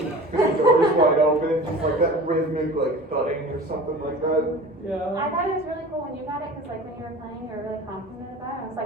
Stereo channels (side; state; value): both; normal; correlation 0.39